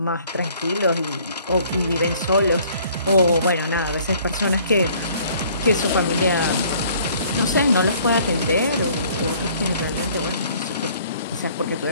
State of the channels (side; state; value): both; inverted; correlation -0.57